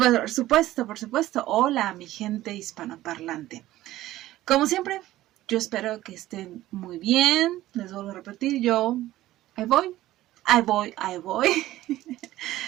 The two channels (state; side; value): quieter; left; 15.3 dB